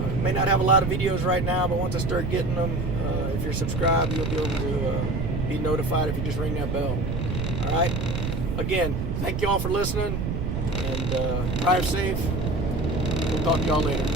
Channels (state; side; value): noise; right; rumble, 2 dB below the sound